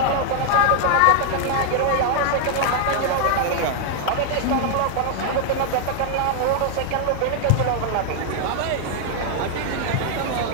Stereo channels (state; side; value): different; both; correlation 0.00